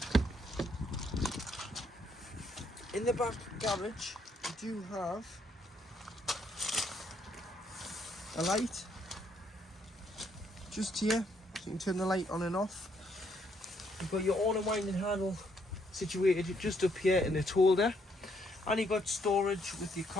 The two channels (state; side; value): normal; both; correlation 0.71